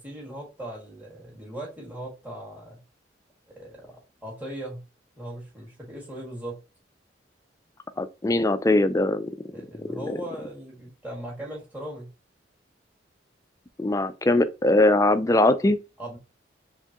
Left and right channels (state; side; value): normal; both; correlation 0.66